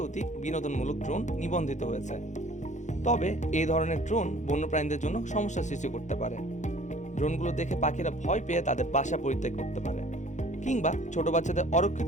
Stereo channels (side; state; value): right; late; 0.35 ms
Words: বিনোদনমূলক ড্রোন নিবন্ধিত হয়েছে। তবে এই ধরনের ড্রোন বন্যপ্রাণীদের জন্য সমস্যা সৃষ্টি করতে পারে। ড্রোনগুলো দেখে পাখিরা ভয় পেয়ে তাদের বাসা পরিত্যাগ করতে পারে কিংবা ছোট বাচ্চাদের